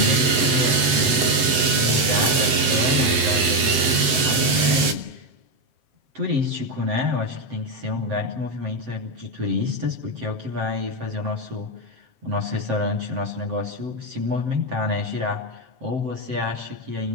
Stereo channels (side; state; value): left; late; 8.0 ms